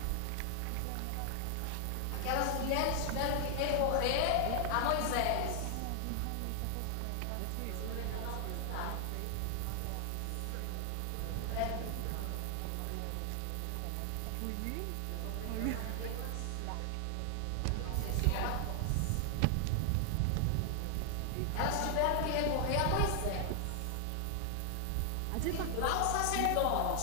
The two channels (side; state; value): both; different; correlation 0.00